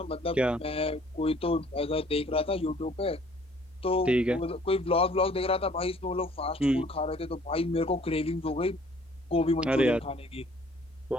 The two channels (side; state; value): both; normal; correlation 0.57